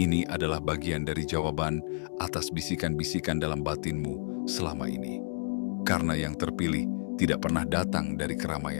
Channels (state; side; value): silent; right; digital silence